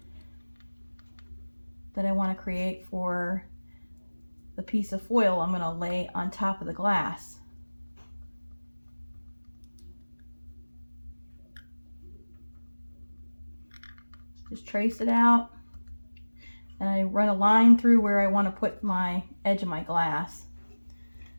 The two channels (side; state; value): both; inverted; correlation -1.00